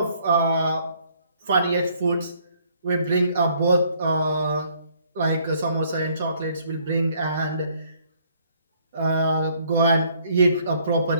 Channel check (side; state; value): both; inverted; correlation -0.63